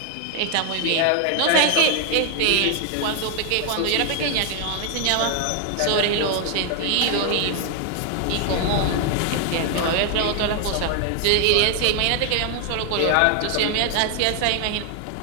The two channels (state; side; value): different; both; correlation 0.00